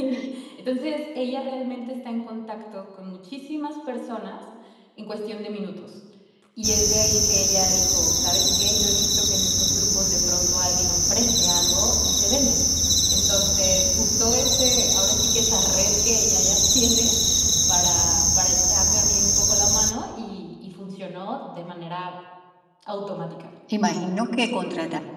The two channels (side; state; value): both; identical; correlation 1.00